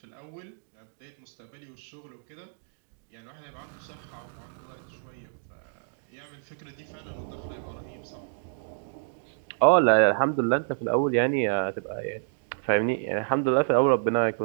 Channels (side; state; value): left; silent; digital silence